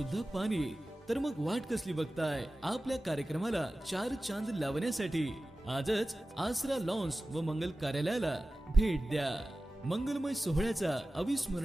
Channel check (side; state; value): both; normal; correlation 0.95